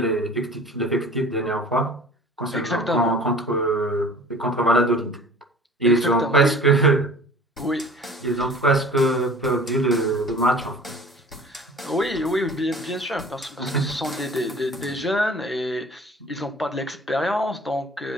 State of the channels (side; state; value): both; normal; correlation 0.45